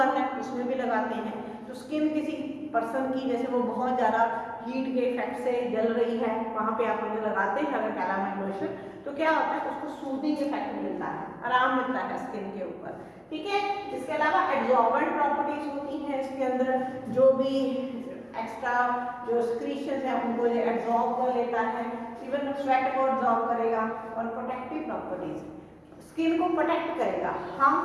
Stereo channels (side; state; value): both; identical; correlation 1.00